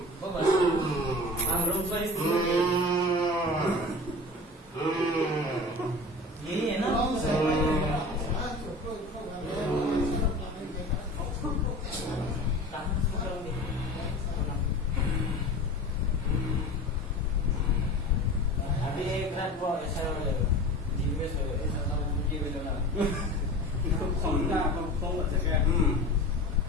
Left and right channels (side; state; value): both; normal; correlation 0.35